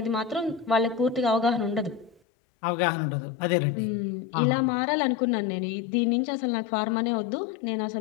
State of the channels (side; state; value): right; drops out; at 2.2 s